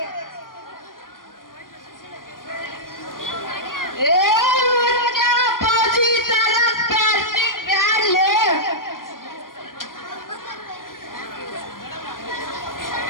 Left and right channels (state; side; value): late; right; 0.91 ms